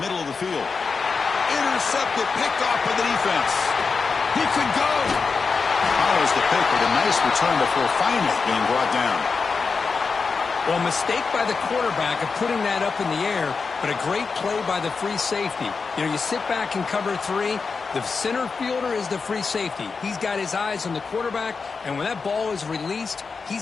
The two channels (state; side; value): quieter; right; 4.9 dB